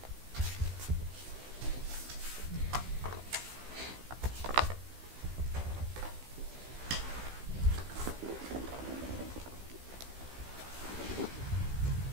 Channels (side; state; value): left; late; 16 ms